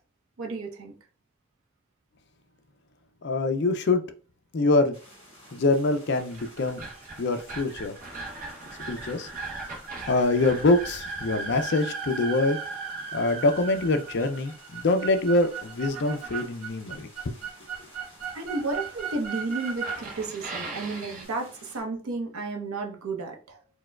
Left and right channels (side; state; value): both; normal; correlation 0.06